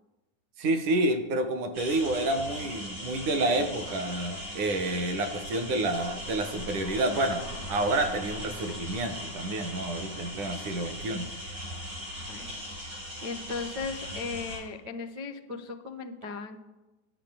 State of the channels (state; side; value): late; left; 10 ms